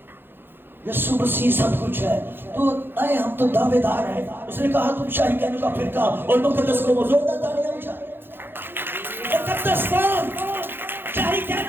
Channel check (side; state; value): left; late; 0.10 ms